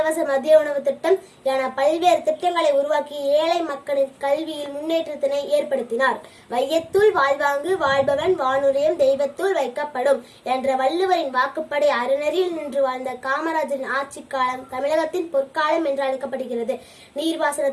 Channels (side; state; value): both; identical; correlation 1.00